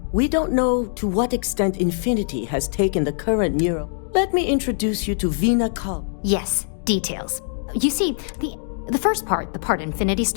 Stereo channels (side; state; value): right; silent; digital silence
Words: we don't know to what extent Infinity has taken the current neuro. Let me introduce you to Vina Kal. Yes, details. You see, the first part, the part Infinity